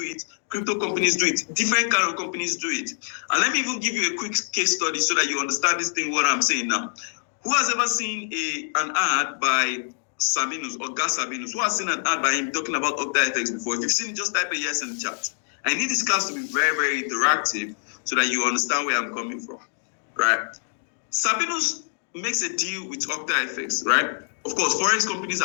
it. Crypto companies do it. Different kind of companies do it. And let me even give you a quick case study so that you understand this thing, what I'm saying now. Who has ever seen an ad by Sabinus or Gas Sabinus? Who has seen an ad by him talking about OctaFX before? If you've seen it, just type a yes in the chat. I need this class to be very, very interactive so that you understand where I'm coming from, right? Sabinus makes a deal with OctaFX, right? Of course, forex companies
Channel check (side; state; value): right; silent; digital silence